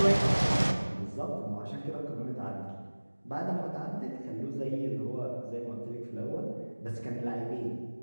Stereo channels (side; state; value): both; inverted; correlation -1.00